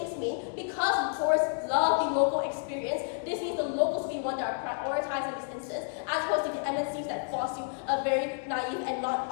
mean, because the tourists love the local experience, this means the locals will be one that are prioritized in this instance, as opposed to the MNCs that force you a very naive and not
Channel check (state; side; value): silent; right; digital silence